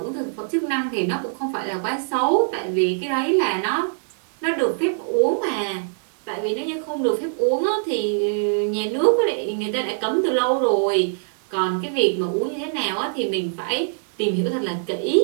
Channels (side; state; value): left; silent; digital silence